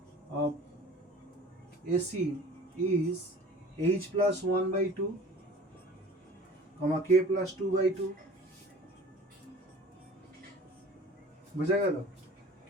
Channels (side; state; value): both; normal; correlation 0.44